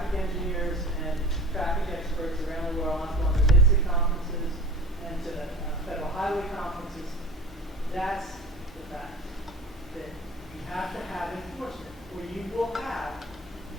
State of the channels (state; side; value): normal; both; correlation 0.38